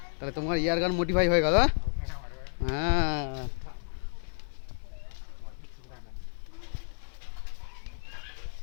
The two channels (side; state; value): right; silent; digital silence